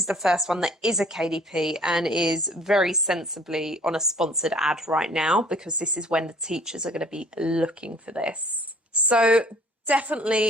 the first one that is a KDP and is very sensibly on a sponsored ad right now, because this is when the teachers are going to be looking for this. So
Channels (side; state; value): both; normal; correlation 0.54